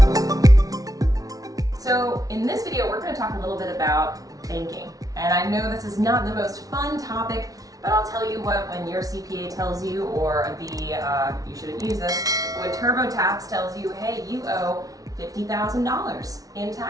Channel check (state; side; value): late; left; 0.18 ms